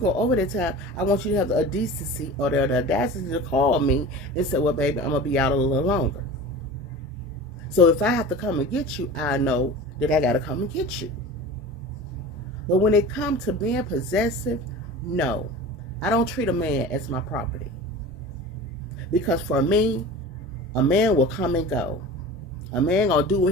over that time, I want you to have the decency or the audacity to call me and say, well, baby, I'm going to be out a little longer. So if I have to come and get you, I know that I got to come and get you. But when it comes to being possessive, no. I don't treat a man as my property. Because for me, a man will come and go. A man gonna do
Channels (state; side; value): normal; both; correlation 0.35